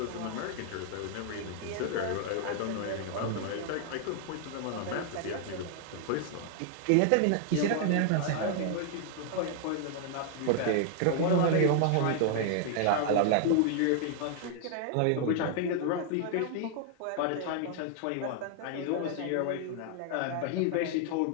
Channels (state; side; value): different; both; correlation 0.00